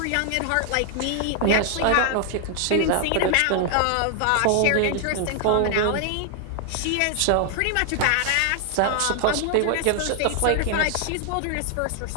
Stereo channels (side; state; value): both; different; correlation 0.00